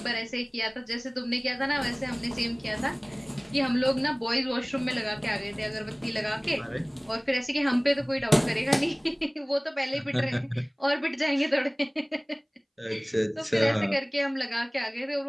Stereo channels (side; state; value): both; identical; correlation 1.00